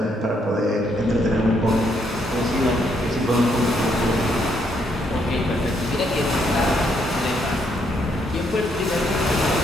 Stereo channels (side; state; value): both; normal; correlation 0.73